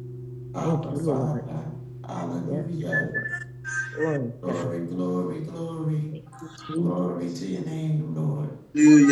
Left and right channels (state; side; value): identical; both; correlation 1.00